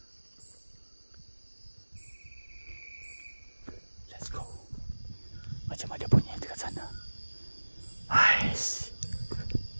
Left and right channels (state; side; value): inverted; both; correlation -1.00